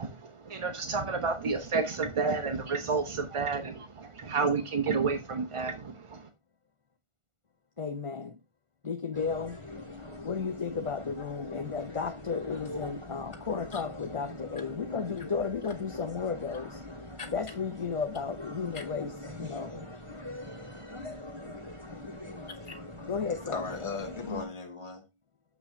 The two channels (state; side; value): late; left; 1.4 ms